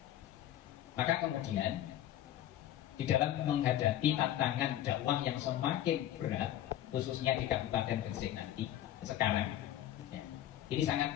Maka kemudian di dalam menghadapi tantangan dakwah yang semakin berat, khususnya di Kabupaten Gresik nanti sekarang, ya, ini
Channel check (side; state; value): right; quieter; 12.5 dB